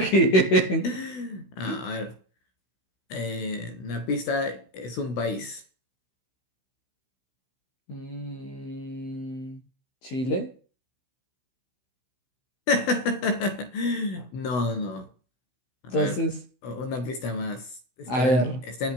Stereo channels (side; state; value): right; late; 16 ms